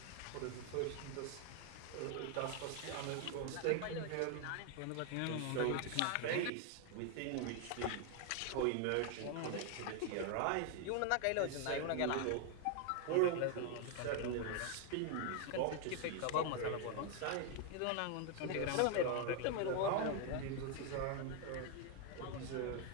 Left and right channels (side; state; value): both; different; correlation 0.01